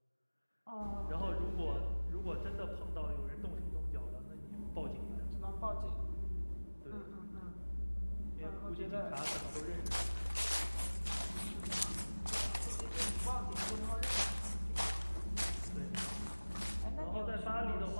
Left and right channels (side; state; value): both; inverted; correlation -1.00